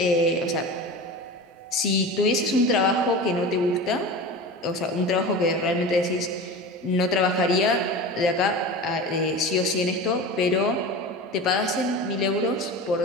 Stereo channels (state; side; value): normal; both; correlation 0.31